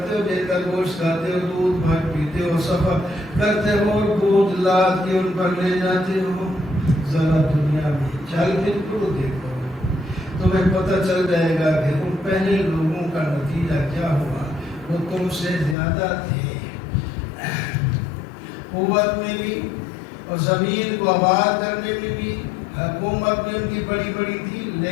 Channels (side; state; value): right; drops out; at 15.8 s